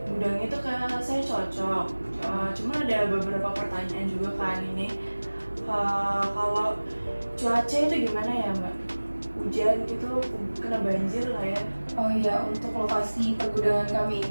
gudang itu kayak saya cocok. Cuma ada beberapa pertanyaan juga kan ini. Kalau cuaca itu gimana ya Mbak? Hujan gitu, kena banjir lah ya? Oh iya, untuk lokasi pergudangan kami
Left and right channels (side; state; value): both; inverted; correlation -1.00